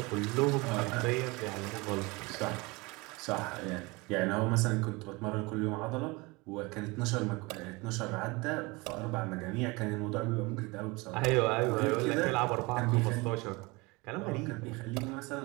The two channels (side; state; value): left; quieter; 24.9 dB